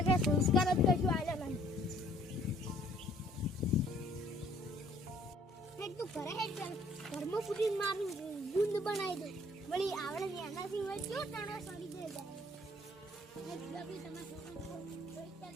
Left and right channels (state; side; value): normal; both; correlation 0.60